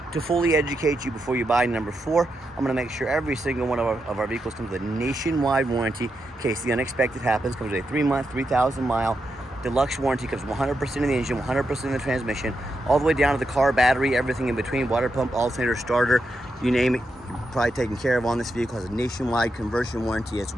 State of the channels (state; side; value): normal; both; correlation 0.85